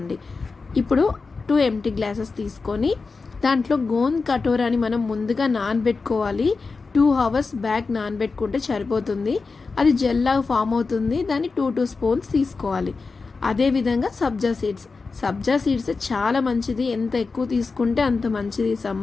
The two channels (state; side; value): quieter; right; 4.3 dB